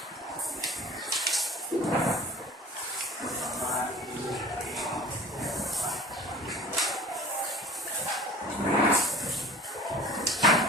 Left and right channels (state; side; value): normal; both; correlation 0.43